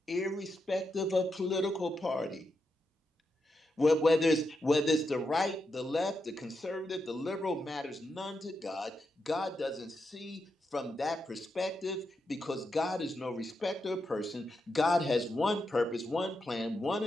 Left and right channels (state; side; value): normal; both; correlation 0.85